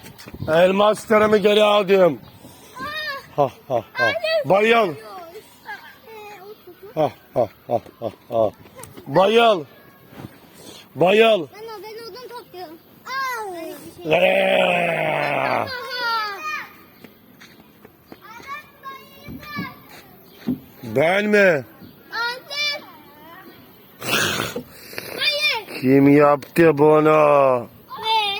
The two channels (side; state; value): both; identical; correlation 1.00